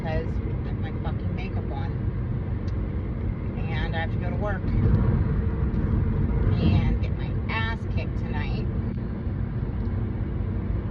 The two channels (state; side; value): identical; both; correlation 1.00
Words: I have my fucking makeup on and I have to go to work and get my ass kicked tonight.